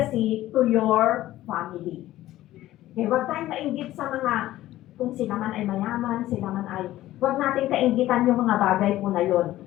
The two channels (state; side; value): quieter; right; 14.9 dB